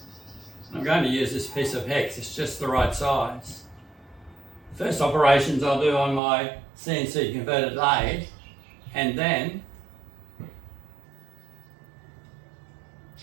I'm going to use this piece of hex, it's just the right size. The first operations I'll do on my CNC converted lathe, and then,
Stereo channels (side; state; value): left; drops out; at 6.2 s